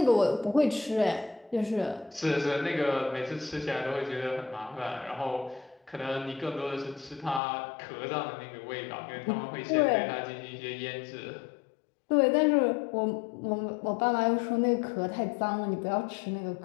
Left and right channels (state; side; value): drops out; right; at 7.4 s